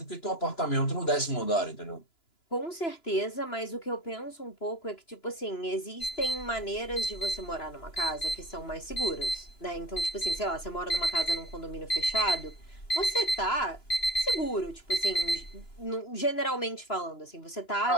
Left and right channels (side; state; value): right; late; 2.9 ms